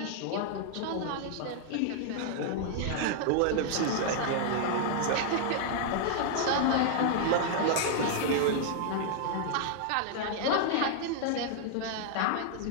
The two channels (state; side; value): different; both; correlation -0.01